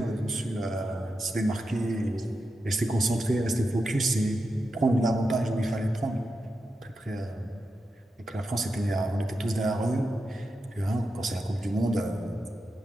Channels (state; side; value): normal; both; correlation 0.88